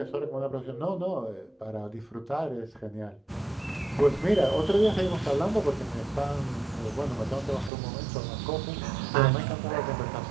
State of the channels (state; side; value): drops out; left; at 7.7 s